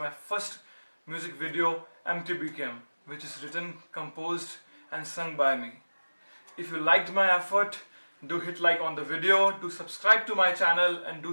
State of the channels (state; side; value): inverted; both; correlation -1.00